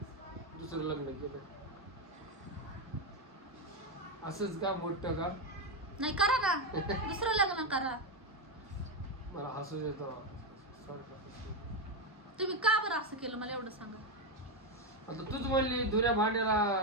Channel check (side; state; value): both; normal; correlation 0.08